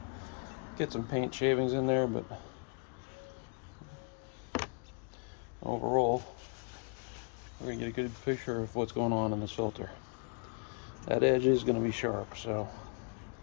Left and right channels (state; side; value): quieter; right; 39.7 dB